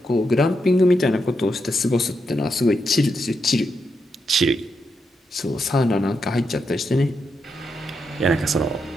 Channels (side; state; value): both; normal; correlation 0.83